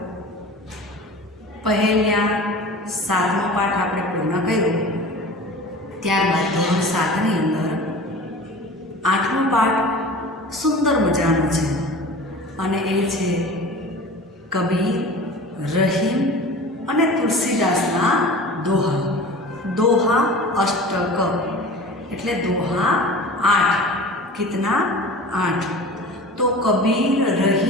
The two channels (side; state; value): both; normal; correlation 0.38